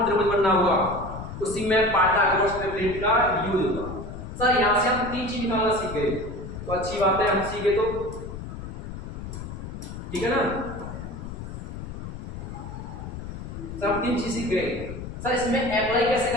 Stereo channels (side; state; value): left; noise; rumble, 9 dB below the sound